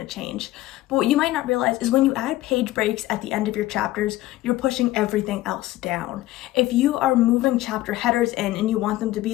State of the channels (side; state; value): right; quieter; 16.5 dB